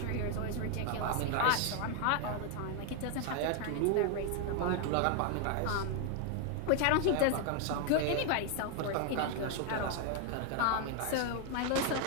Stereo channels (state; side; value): different; both; correlation 0.01